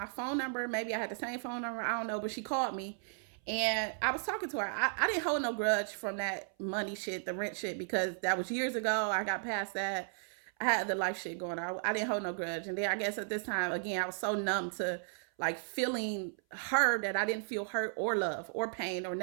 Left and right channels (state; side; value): silent; left; 54 dB below the other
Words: phone number. Maybe I had the same phone number. I don't know. But she called me. And I was talking to her. I didn't hold no grudge from that money shit, the rent shit, because that was years ago. I got past that. I had the life shit going on. I didn't hold no grudge. And then I guess at this time, again, I was so numb to like feeling her that I didn't feel hurt or love or pain or